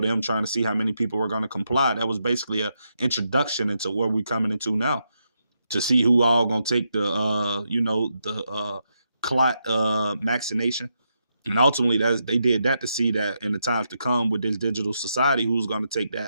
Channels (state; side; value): inverted; both; correlation -0.83